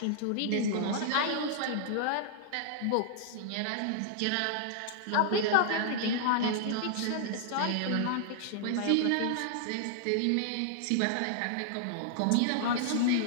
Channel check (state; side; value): different; both; correlation -0.01